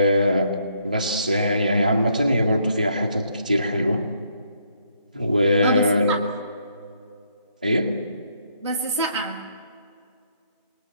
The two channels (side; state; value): both; inverted; correlation -0.71